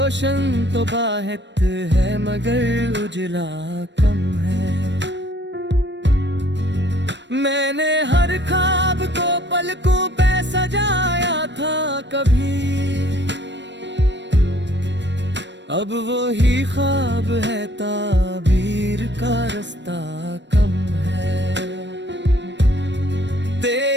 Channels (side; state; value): left; late; 0.52 ms